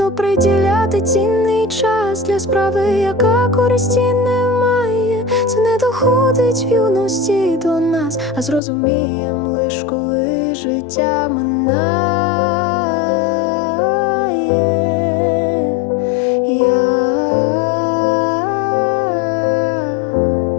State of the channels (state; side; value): drops out; right; at 8.6 s